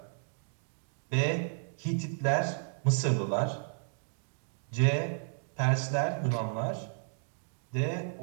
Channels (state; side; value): silent; left; digital silence